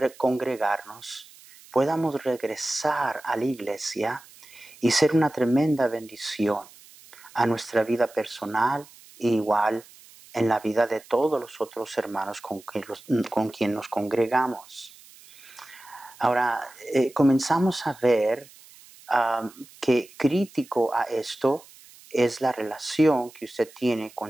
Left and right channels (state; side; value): noise; right; hiss, 23 dB below the sound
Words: congregarnos, podamos regresar a la iglesia y ser una tremenda bendición a nuestra vida personal e igual en la vida de todos los otros hermanos con quien nos congregamos. Ahora, comenzamos a ver que crítico a esto es la relación que usted tiene